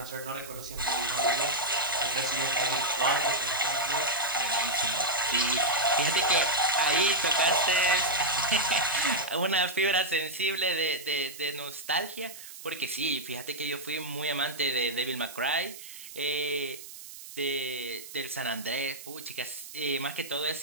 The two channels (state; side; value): noise; right; hiss, 14 dB below the sound